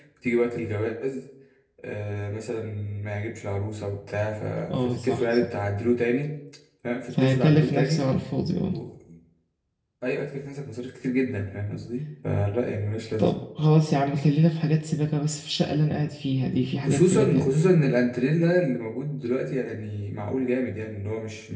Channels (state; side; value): identical; both; correlation 1.00